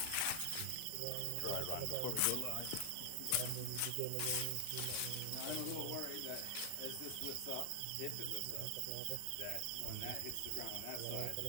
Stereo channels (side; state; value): both; different; correlation 0.00